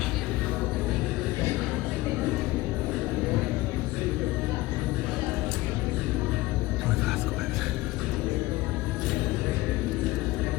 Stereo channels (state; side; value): quieter; right; 19.2 dB